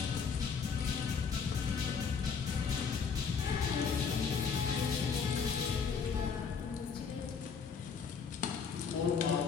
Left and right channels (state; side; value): quieter; right; 6.0 dB